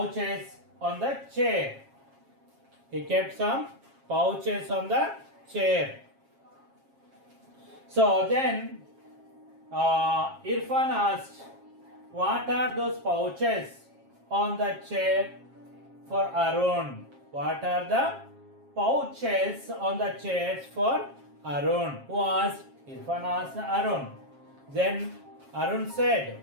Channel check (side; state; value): left; late; 7.4 ms